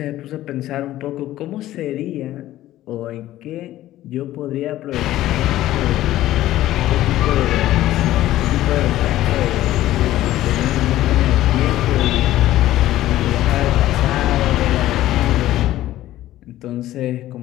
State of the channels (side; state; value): right; quieter; 14.5 dB